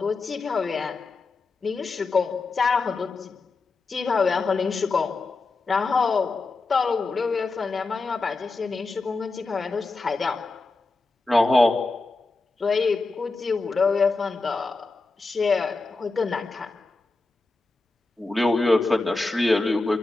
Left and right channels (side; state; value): right; quieter; 3.6 dB